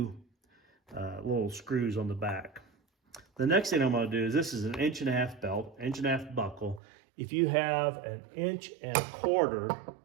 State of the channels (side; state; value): left; drops out; at 6.8 s